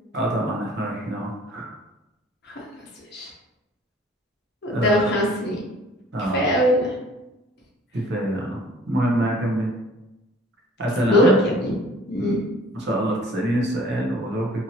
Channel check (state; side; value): normal; both; correlation 0.52